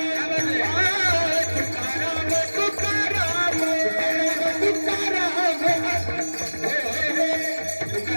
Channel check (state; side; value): inverted; both; correlation -1.00